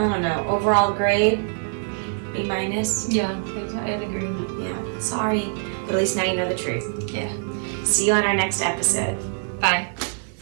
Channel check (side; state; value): left; silent; 63 dB below the other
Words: don't know, overall grade, B-. Yeah, I'd agree. Yeah, sorry. But at least now you know the truth. Yeah. See you on our next episode. Bye.